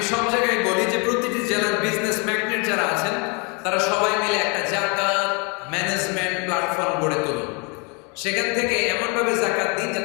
সব জায়গায় বলি যে প্রতিটি জেলার বিজনেস ম্যাগনেট যারা আছেন, তারা সবাই মিলে একটা যাকাত ম্যানেজমেন্ট প্ল্যাটফর্ম গড়ে তুলুন। সেখান থেকে এমনভাবে যাকাত দিন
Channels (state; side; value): quieter; right; 32.5 dB